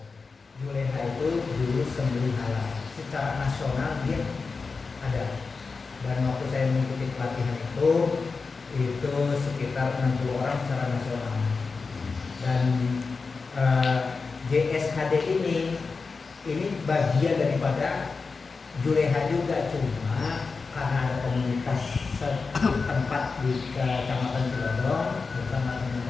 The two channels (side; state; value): right; quieter; 4.5 dB